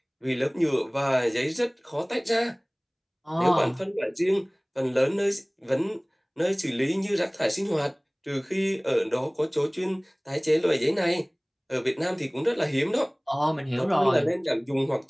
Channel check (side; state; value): both; identical; correlation 1.00